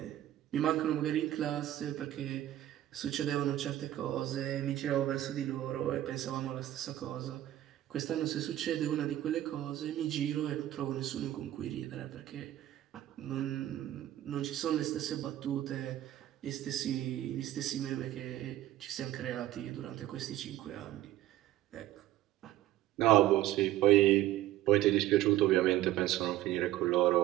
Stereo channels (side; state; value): left; quieter; 13.9 dB